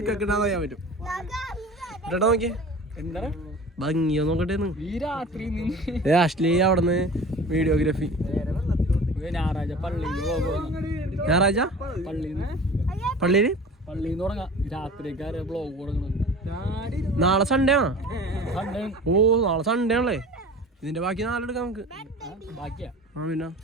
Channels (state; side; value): normal; both; correlation 0.39